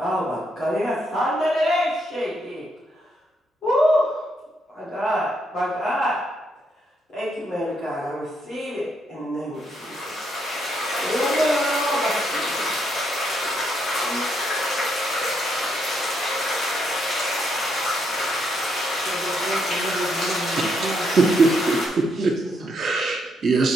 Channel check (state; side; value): normal; both; correlation 0.76